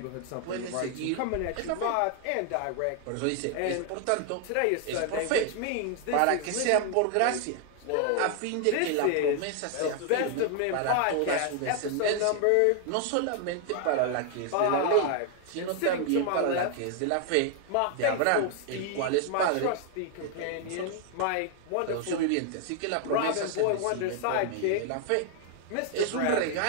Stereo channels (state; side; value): different; both; correlation 0.00